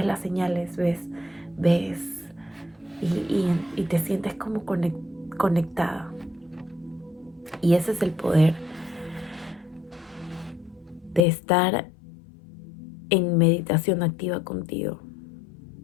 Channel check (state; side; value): drops out; right; at 11.2 s